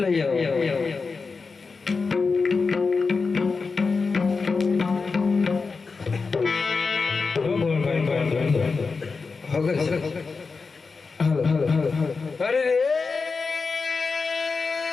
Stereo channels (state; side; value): quieter; right; 4.5 dB